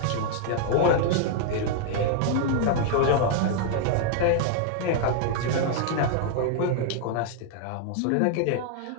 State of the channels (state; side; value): different; both; correlation 0.00